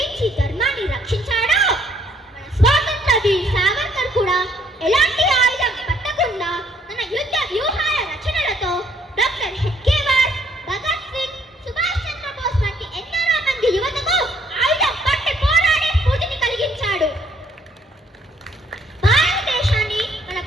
ధర్మాన్ని రక్షించాడో, మన స్వాతంత్ర వీర్ సావర్కర్ కూడా ఎలాంటి ఆయుధం పట్టకుండా తన యుద్ధ వ్యూహాల రచనలతో డాక్టర్ హెడ్గేవార్, భగత్ సింగ్, సుభాష్ చంద్రబోస్ వంటి ఎందరో మంది యువతకు ఆయుధం పట్టి పోరాడే స్ఫూర్తిని కలిగించాడు. భారతదేశాన్ని మన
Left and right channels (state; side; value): normal; both; correlation 0.66